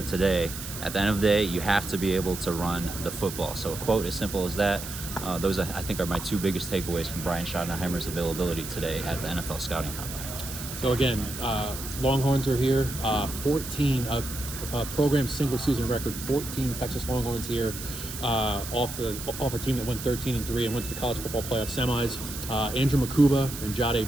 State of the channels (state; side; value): noise; right; hiss, 9 dB below the sound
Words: today, at the end of the day, you have to be able to run the football. So a quote as simple as that. Those, I think, are my 2 biggest takeaways from Brian Schottenheimer's availability today at the NFL Scouting Combine. So again, Longhorns are here. 14 program single season record. 14 Texas Longhorns here off a team that went 13-3 and went to the college football playoff semis. Andrew Mukuba and